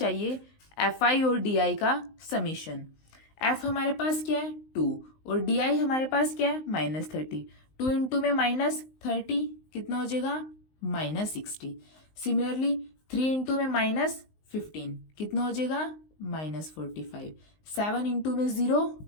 FI और DI का समीशन। F हमारे पास क्या है 2 और DI हमारे पास क्या है -30। 2 इंटू में -30 कितना हो जाएगा, -60। सिमिलरली 3 इंटू में -15 कितना हो जाएगा, -45। 7 इंटू में 0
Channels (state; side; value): late; right; 19 ms